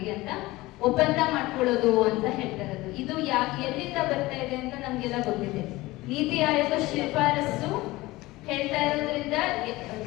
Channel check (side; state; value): right; quieter; 19.7 dB